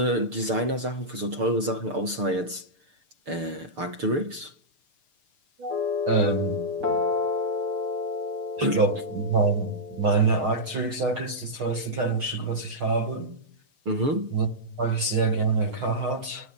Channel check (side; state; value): left; late; 6.7 ms